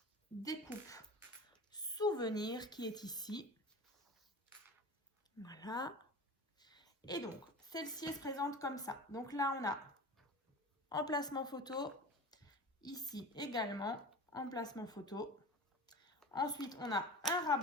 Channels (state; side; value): normal; both; correlation 0.34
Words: découpe souvenir qui est ici. Voilà. Et donc celle-ci se présente comme ça. Donc là, on a emplacement photo. Ici également, emplacement photo. Ensuite, on a un